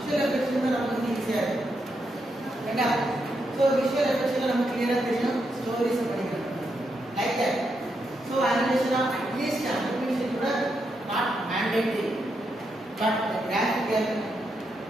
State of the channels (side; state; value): both; normal; correlation 0.82